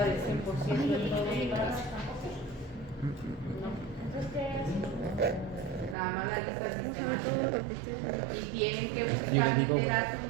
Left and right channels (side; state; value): left; drops out; at 6.0 s